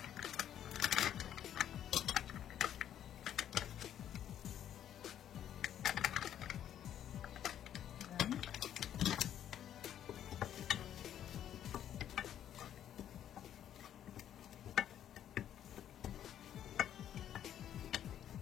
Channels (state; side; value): quieter; right; 10.5 dB